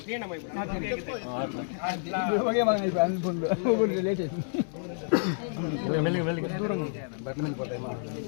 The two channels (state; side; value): silent; right; digital silence